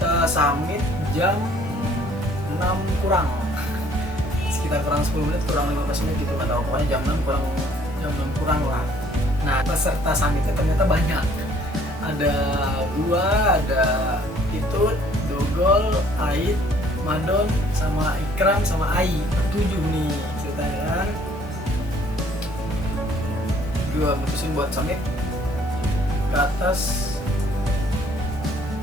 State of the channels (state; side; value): normal; both; correlation 0.59